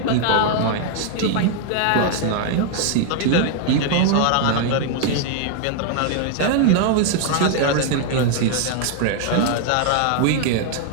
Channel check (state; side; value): different; both; correlation 0.00